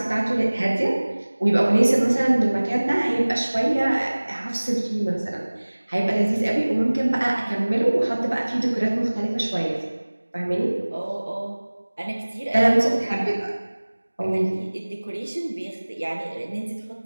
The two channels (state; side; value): inverted; both; correlation -1.00